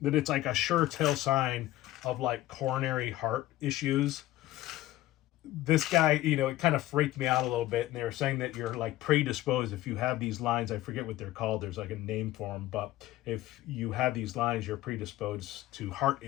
it's like a sure tell sign of like coronary heart issues. This guy, it kind of freaked me out a little bit. And they were saying that you're like predisposed if you have these lines. I forget what they're called. There's like a name for them. But if you have these lines, you're predisposed to heart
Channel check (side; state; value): right; quieter; 15.8 dB